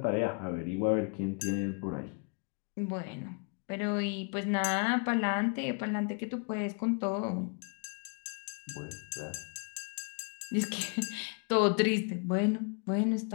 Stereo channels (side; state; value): right; quieter; 35.7 dB